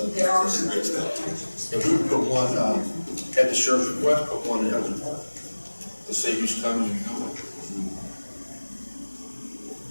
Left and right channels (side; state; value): both; inverted; correlation -1.00